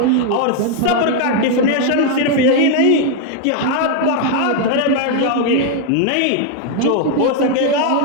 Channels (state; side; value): different; both; correlation 0.01